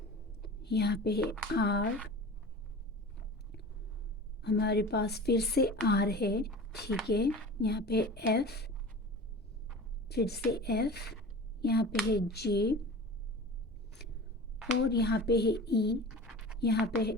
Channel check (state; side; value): normal; both; correlation 0.36